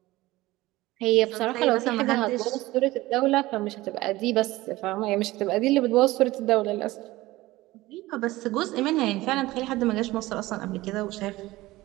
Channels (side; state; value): left; quieter; 18.4 dB